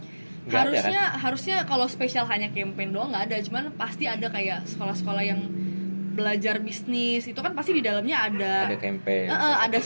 Harusnya kalau spesial hanya campaign doang nggak ada, cuman pasti ada kayak sekolah-sekolah yang belajar bisnis itu kan pasti di dalamnya ada campaign, ada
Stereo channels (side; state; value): both; inverted; correlation -1.00